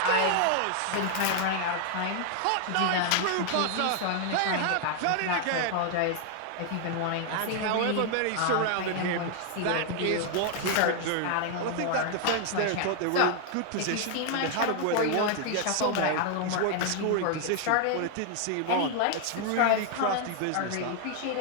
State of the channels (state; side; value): different; both; correlation 0.00